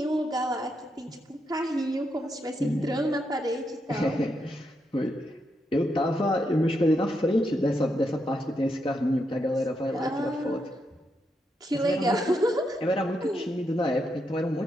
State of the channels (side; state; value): both; normal; correlation 0.82